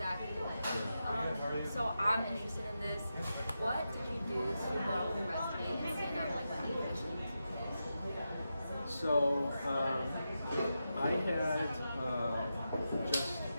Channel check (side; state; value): both; inverted; correlation -0.89